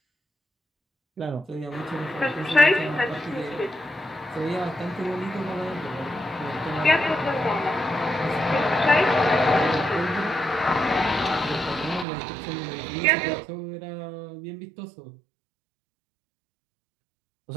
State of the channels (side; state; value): left; drops out; at 12.1 s